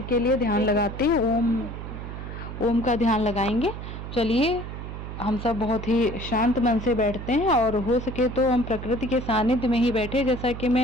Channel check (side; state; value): right; noise; hum, 9 dB below the sound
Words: के लिए ध्यान लगाते हैं। ओम का ध्यान लगाएंगे। चलिए हम सब बहुत ही शांत मन से बैठते हैं और हो सके तो हम प्रकृति के सानिध्य में ही बैठे, जैसा कि